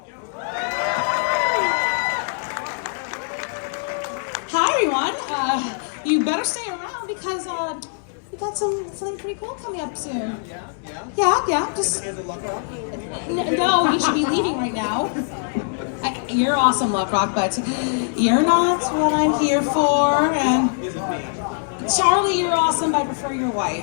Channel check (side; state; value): right; silent; digital silence